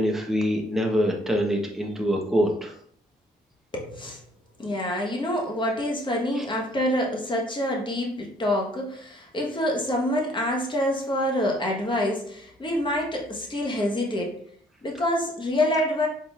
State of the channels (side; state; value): both; normal; correlation 0.62